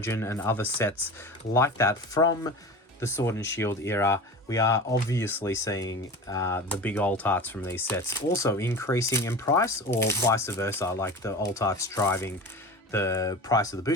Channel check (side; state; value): both; normal; correlation 0.33